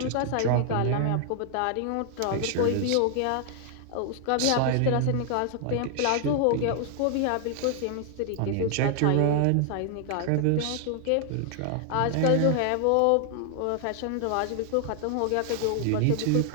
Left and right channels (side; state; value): both; different; correlation 0.00